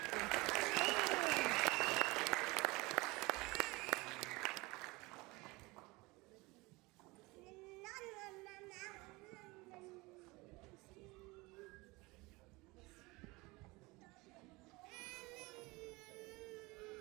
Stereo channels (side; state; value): left; quieter; 23.5 dB